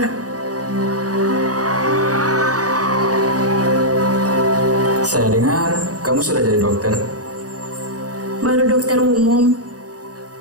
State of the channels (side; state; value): left; late; 0.68 ms